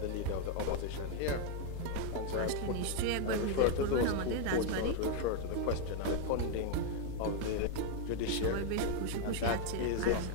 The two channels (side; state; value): both; different; correlation 0.00